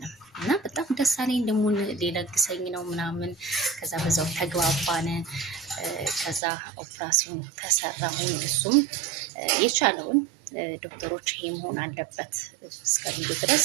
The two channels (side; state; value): left; drops out; at 6.4 s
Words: እና በጣም ደስ አለኝ። ደግሞ ሊለግሰኝ ነው ምናምን። ከዛ በዛው ተግባባን። ከዛ ኦፕራሲዮን ተሰራሁኝ። እሱም የቻለውን ዶክተሮች ይሄ መሆን አለበት እስከሚሉ ድረስ